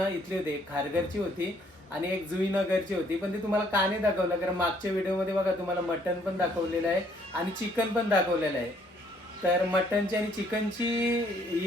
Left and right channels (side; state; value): both; normal; correlation 0.65